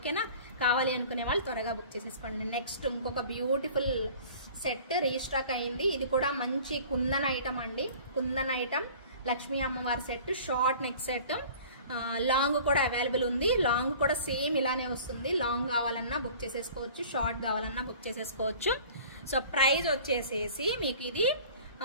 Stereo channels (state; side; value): inverted; both; correlation -0.46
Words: కావాలి అనుకునే వాళ్ళు త్వరగా బుక్ చేసేసుకోండి. నెక్స్ట్ ఇంకొక బ్యూటిఫుల్ సెట్ రీస్టాక్ అయింది. ఇది కూడా మంచి కుందన్ ఐటమ్ అండి. కుందన్ ఐటమ్ లక్ష్మీ అమ్మవారి set, short neck set. Long కూడా అవైలబుల్ ఉంది. లాంగ్ కూడా సేమ్ ఇలానే వస్తుంది. లాంగ్ కావాలన్నా బుక్ చేసేసుకోవచ్చు, షార్ట్ కావాలన్నా బుక్ చేసేసుకోవచ్చు. సో ప్రైస్ వచ్చేసేసి మీకు ఇది